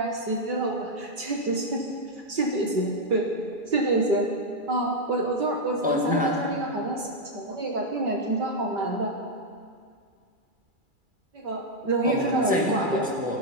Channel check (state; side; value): late; left; 2.3 ms